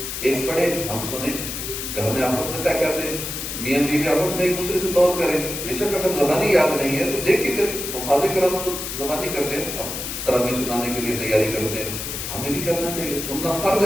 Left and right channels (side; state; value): left; noise; hiss, 5 dB below the sound